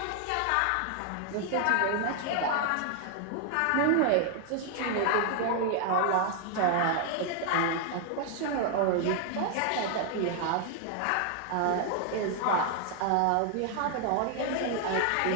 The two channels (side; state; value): both; different; correlation 0.00